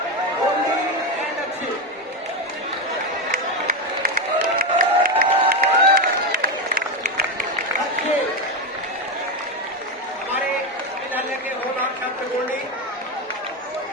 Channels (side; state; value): both; normal; correlation 0.12